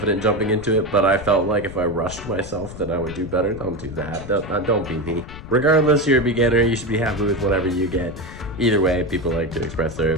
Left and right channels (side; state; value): left; noise; rumble, 13 dB below the sound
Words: jumping into it, but I felt like if I rushed myself then I would do better. Don't do that. Don't be me. Regardless, you're a beginner, you should be happy with whatever you get. Either way, people like to express their